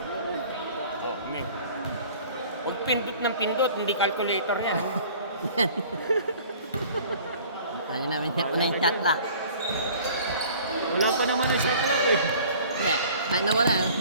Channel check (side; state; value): both; inverted; correlation -0.49